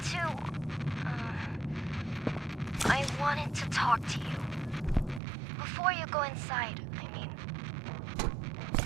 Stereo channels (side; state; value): left; drops out; at 5.2 s